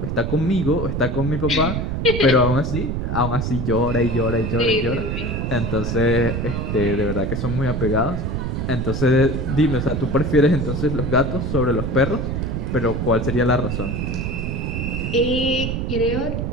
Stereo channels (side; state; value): right; noise; rumble, 2 dB below the sound